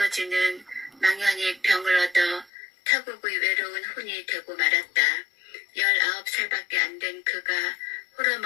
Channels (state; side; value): drops out; right; at 2.5 s